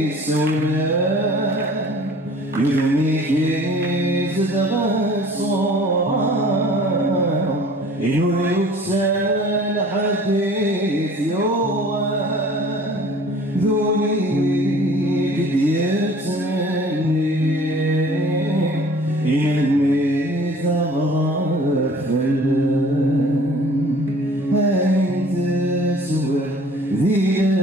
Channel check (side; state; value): both; normal; correlation 0.49